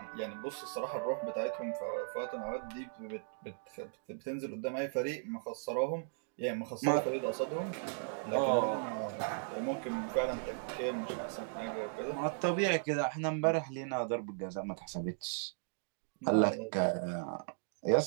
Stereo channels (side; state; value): left; silent; digital silence